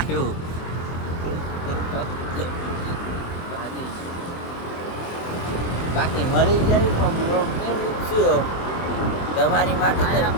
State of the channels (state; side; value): late; right; 24 ms